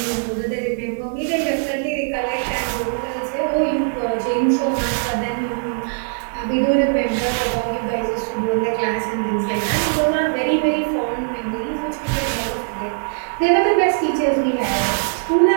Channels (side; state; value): left; silent; 65 dB below the other